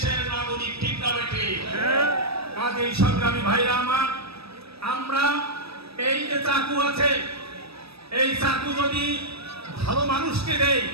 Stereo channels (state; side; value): late; left; 0.77 ms